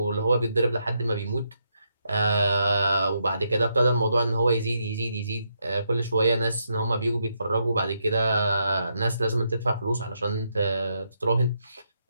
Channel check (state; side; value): inverted; both; correlation -0.79